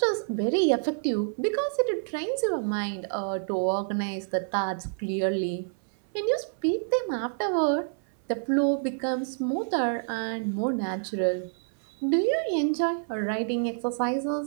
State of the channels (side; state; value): left; silent; 59 dB below the other